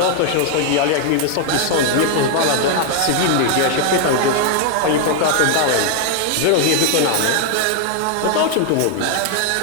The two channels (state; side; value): different; both; correlation 0.00